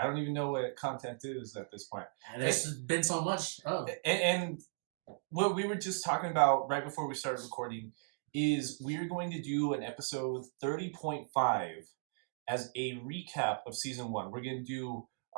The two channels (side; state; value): left; silent; digital silence